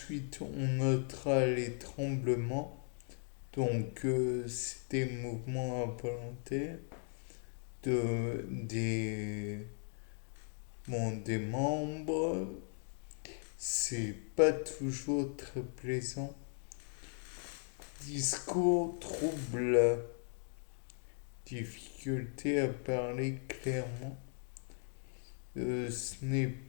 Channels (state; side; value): silent; right; 53 dB below the other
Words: on notera les tremblements. Donc c'est des mouvements involontaires des, bon, des membres. C'est pas toujours très plaisant. Discours trouble, difficulté à parler clairement. Ce n'est